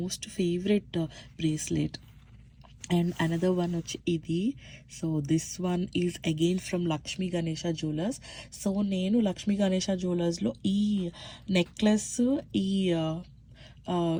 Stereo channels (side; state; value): both; identical; correlation 1.00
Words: favourite bracelet. And another one వచ్చి ఇది. So this one is again from Lakshmi Ganesha jewellers. సో నేను లక్ష్మీ గణేష జ్యువెలర్స్లో ఈ నెక్లెస్,